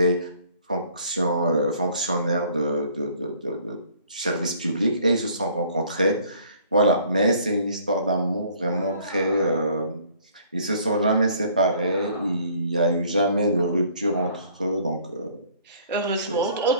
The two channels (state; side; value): inverted; both; correlation -0.57